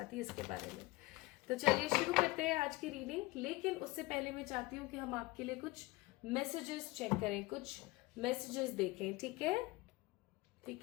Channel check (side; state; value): right; quieter; 21.6 dB